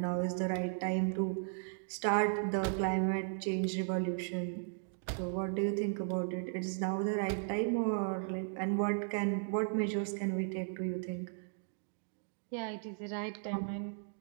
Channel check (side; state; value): left; silent; digital silence